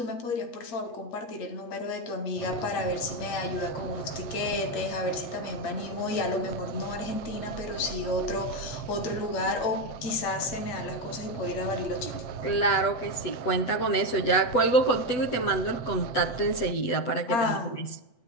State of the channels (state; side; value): late; right; 8.1 ms